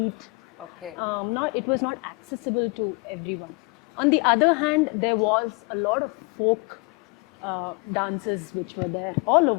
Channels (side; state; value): right; quieter; 29.9 dB